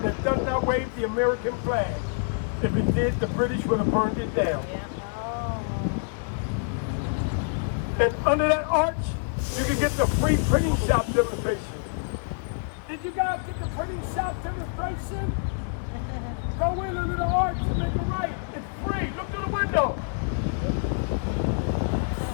that does not wave the American flag. If it did, the British would have burned it down. And under that arch, you can get the free printing shop demonstration. Did you guys get the printing shop demonstration? Go in under the arch and make a right. It's free. Look through the window.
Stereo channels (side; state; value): right; silent; digital silence